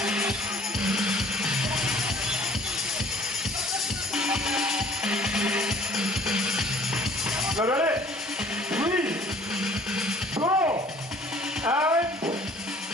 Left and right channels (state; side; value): normal; both; correlation 0.53